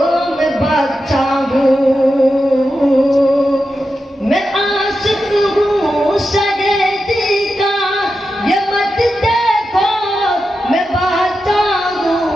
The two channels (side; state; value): both; normal; correlation 0.89